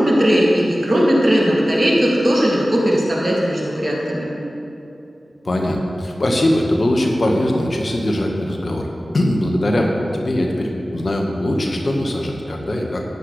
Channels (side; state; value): both; normal; correlation 0.96